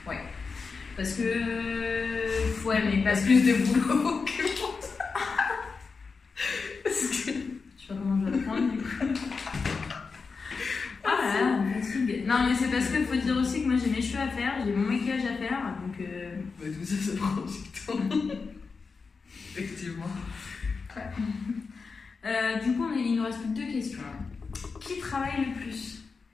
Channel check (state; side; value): quieter; right; 4.8 dB